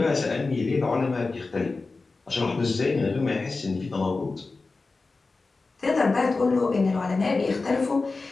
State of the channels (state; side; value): quieter; right; 3.8 dB